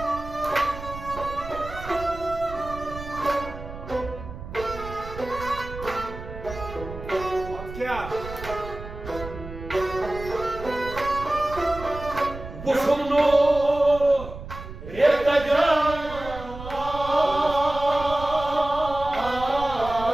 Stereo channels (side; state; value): right; noise; rumble, 12 dB below the sound